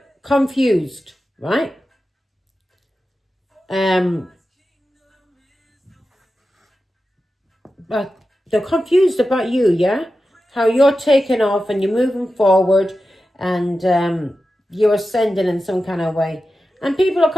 confused, right? But they're confused about you, yeah? How you're taking off and you're moving forward and you're ascending in some kind of way. And people are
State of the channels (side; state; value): both; normal; correlation 0.92